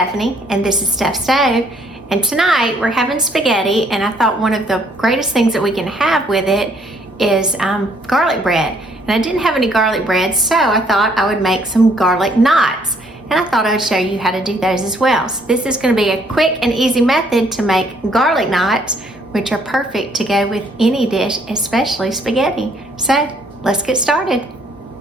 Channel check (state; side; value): normal; both; correlation 0.66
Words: and this is Steph Stove, and tonight we're having spaghetti, and I thought one of the greatest things that we can have with it is garlic bread. And I didn't have any garlic bread, so I thought I would make some garlic knots, and I thought I would show you how to do those as well. So this is going to be a quick and easy method to make garlic knots, which are perfect to go with any dish, especially spaghetti. So let's get started.